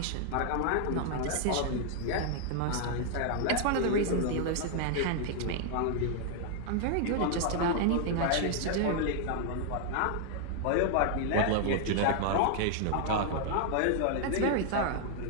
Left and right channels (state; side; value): different; both; correlation 0.00